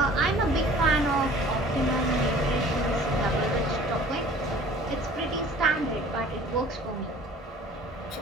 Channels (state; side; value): normal; both; correlation 0.48